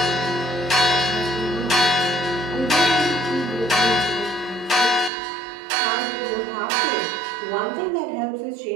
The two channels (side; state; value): left; drops out; at 5.1 s